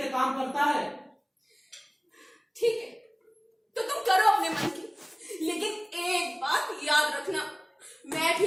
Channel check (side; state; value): both; identical; correlation 1.00